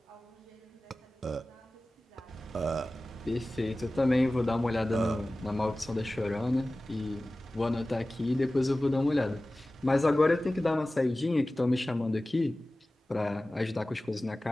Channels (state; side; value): normal; both; correlation 0.97